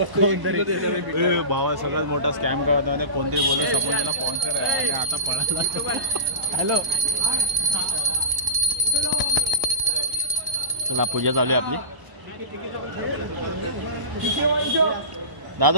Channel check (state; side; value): late; left; 1.0 ms